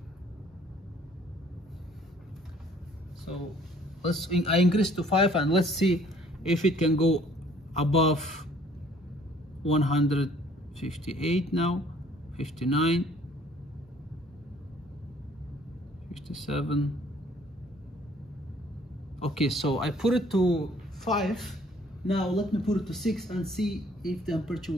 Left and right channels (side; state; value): both; normal; correlation 0.58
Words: So I increase to 5, and let's see if it can go above 158 now, 59, 57. Okay, so I put it to 5. Now let me put it to 6 and see if temperature